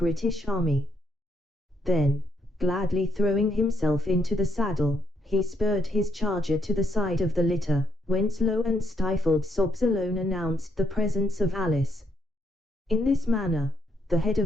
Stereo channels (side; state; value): both; normal; correlation 0.75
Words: Army. Then, gladly throwing himself into the saddle, he spurred his charger to the side of the litter, whence low and stifled sobs alone announced the presence of Alice. In this manner, the head